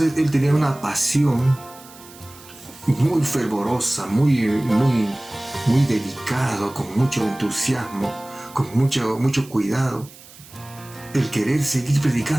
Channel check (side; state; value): right; noise; hiss, 21 dB below the sound